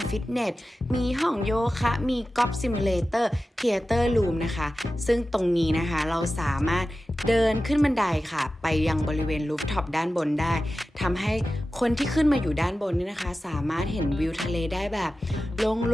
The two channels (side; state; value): both; normal; correlation 0.94